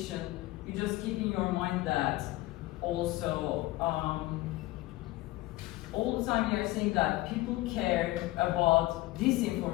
you just keep in your mind that also all the time we are saying that people care about this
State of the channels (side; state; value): right; quieter; 18.6 dB